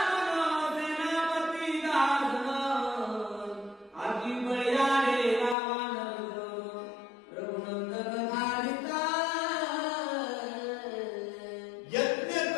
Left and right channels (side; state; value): right; drops out; at 5.6 s